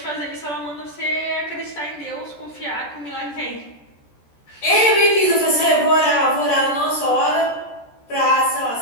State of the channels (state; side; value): late; right; 14 ms